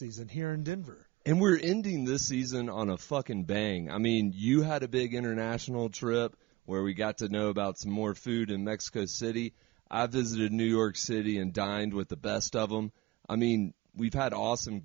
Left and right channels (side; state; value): left; quieter; 20.2 dB